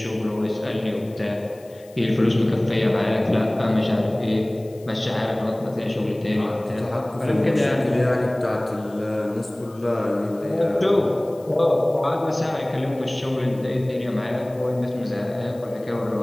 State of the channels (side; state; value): left; noise; hiss, 27 dB below the sound